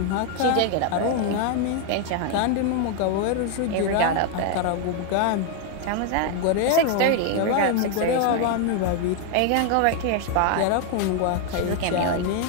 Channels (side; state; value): both; different; correlation 0.01